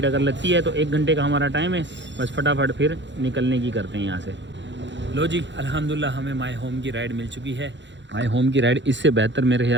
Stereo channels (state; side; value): late; left; 0.53 ms